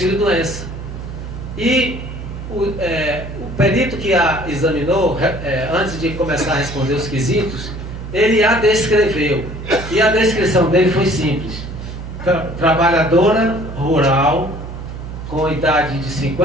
E o perito que a examinou, antes de começar a responder os quesitos, ele a descreveu. E a descrição dele foi simples. Trabalhadora rural, com idade de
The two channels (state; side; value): noise; right; hum, 9 dB below the sound